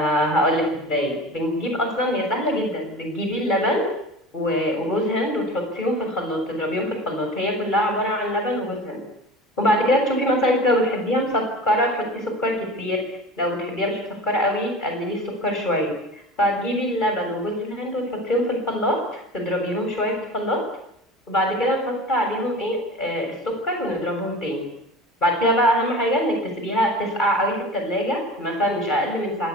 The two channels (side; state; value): both; normal; correlation 0.35